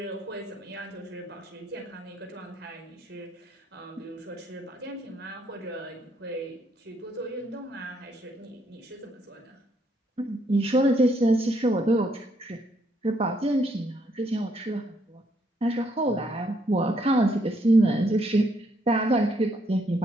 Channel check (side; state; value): both; normal; correlation 0.72